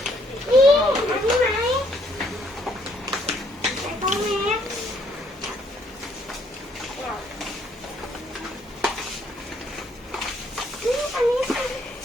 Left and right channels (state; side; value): normal; both; correlation 0.67